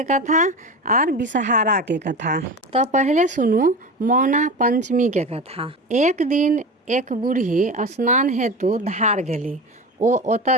कथा और विषहारा के कथा। तो पहले सुनू मौना पंचमी के कथा। एक दिन एक बूढ़ी स्नान हेतु धार गेली। ओ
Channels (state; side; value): normal; both; correlation 0.28